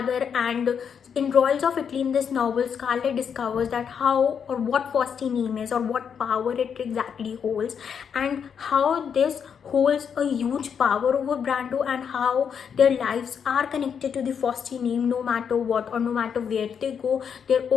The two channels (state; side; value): quieter; right; 7.2 dB